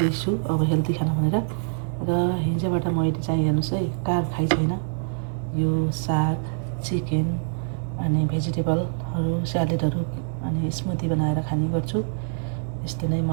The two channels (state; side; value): silent; left; 62 dB below the other